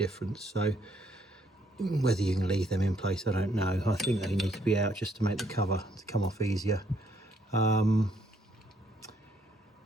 So whether you can leave them in place, I don't know. I think they need to be out just to make the cover to come off easier.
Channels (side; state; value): both; normal; correlation 0.69